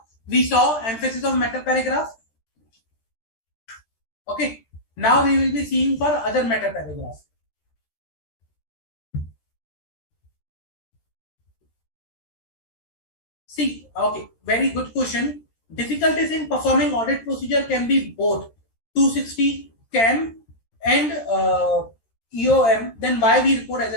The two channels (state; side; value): late; right; 13 ms